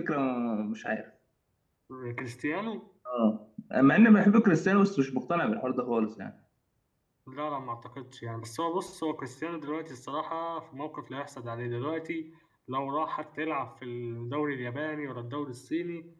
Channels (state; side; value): identical; both; correlation 1.00